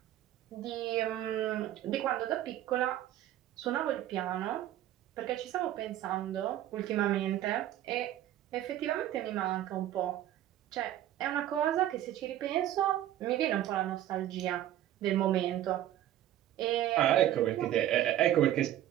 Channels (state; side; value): quieter; left; 12.7 dB